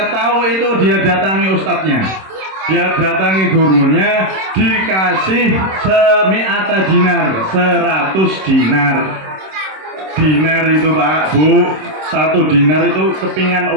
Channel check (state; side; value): late; left; 26 ms